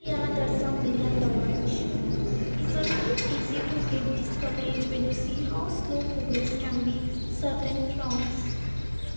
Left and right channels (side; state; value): both; inverted; correlation -1.00